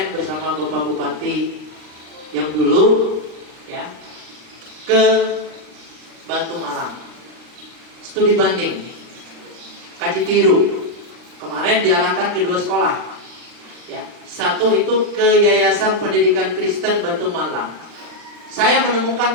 bersama Bapak Bupati yang dulu, ya, ke Batu Malang, studi banding, kaji tiru. Kemarin diarahkan ke 2 sekolah, ya. Satu itu ke Yayasan Pendidikan Kristen Batu Malang. Saya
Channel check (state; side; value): late; left; 39 ms